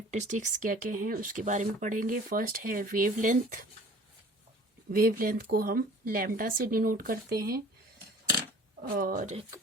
क्या क्या हैं उसके बारे में पढ़ेंगे। फर्स्ट है वेव लेंथ। वेव लेंथ को हम लैम्डा से डिनोट करते हैं। और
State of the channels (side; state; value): both; normal; correlation 0.48